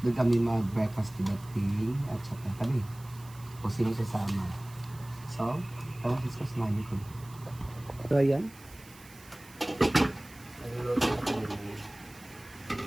doon kami mag-breakfast di Bating at saka kami kung sino sasama. So, parang discuss namin ko. So, ayan. Nagluluto na kami ng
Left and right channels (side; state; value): right; noise; hiss, 22 dB below the sound